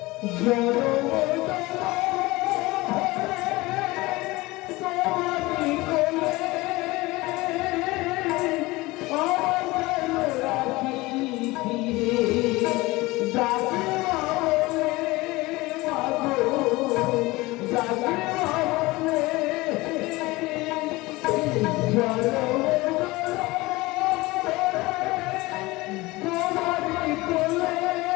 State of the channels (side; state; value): right; quieter; 21.1 dB